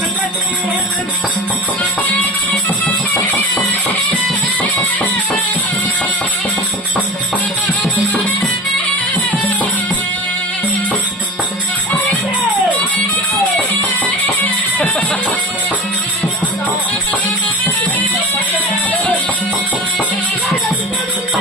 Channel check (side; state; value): both; normal; correlation 0.32